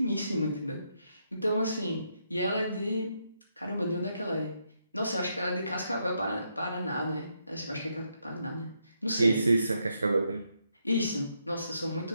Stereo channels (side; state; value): both; inverted; correlation -0.79